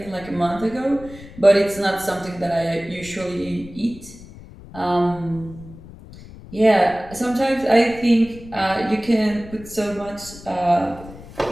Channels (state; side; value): noise; left; rumble, 17 dB below the sound